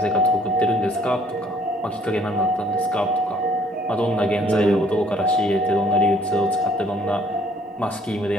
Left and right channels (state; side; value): normal; both; correlation 0.61